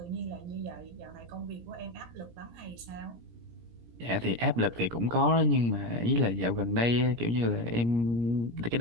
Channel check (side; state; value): left; late; 17 ms